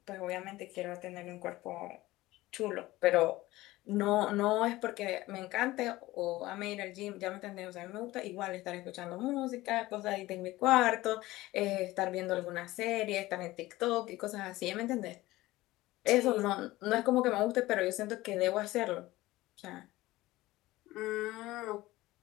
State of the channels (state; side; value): quieter; right; 18.1 dB